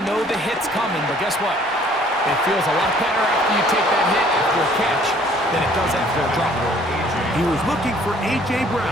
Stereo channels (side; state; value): both; normal; correlation 0.58